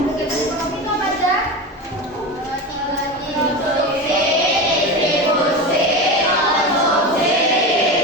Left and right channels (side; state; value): both; normal; correlation 0.24